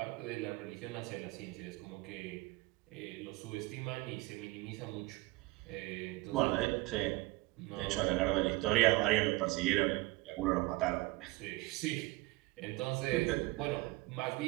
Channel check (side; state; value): left; quieter; 21.3 dB